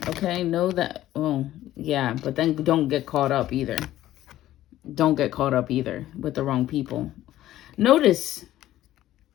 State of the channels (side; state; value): right; quieter; 14.0 dB